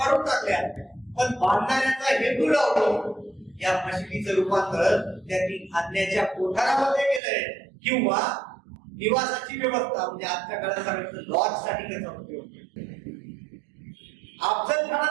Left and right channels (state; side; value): drops out; left; at 7.2 s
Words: टाकल्या, पण बांधणाऱ्याचा हेतू लावतो. या मशिदीचं रूपांतर त्यांनी खाण्याच्या कोठारामध्ये केलंय किंवा निवासाची व्यवस्था, म्हणजे आजच्या काळात सांगितलं लॉज साठी त्याचा उपयोग. अफजल